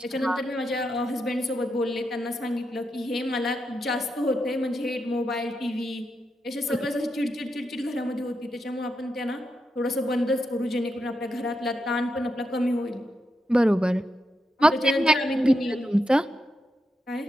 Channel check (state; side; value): normal; both; correlation 0.85